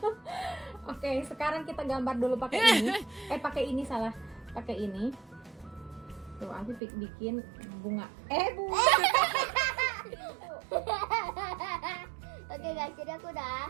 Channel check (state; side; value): drops out; left; at 6.8 s